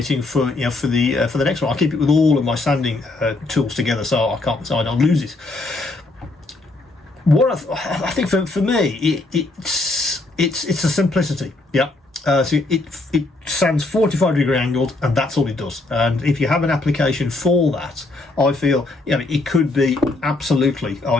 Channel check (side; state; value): right; quieter; 3.0 dB